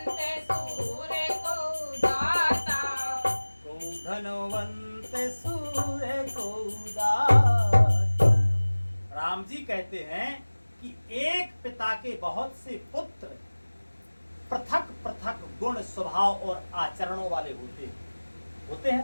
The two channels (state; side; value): inverted; both; correlation -1.00